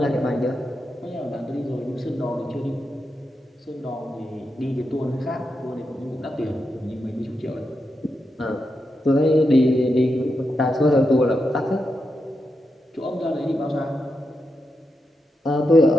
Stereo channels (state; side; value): normal; both; correlation 0.86